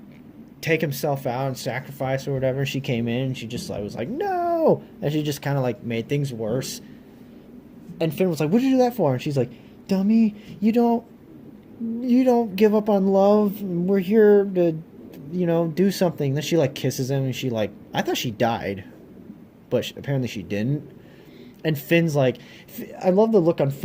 take himself out and sacrifice or whatever. She came in and she just was like, no, and she just kind of made things worse. And Finn was like, what'd you do that for? And she's like, dummy, you don't give up on love. We're here to do something. Then she kisses him and I thought she died, but apparently she didn't. And Finn's I love the look on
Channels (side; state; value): both; identical; correlation 1.00